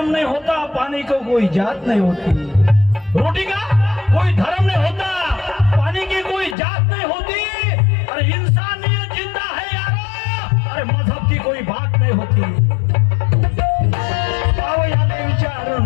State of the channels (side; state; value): right; drops out; at 6.6 s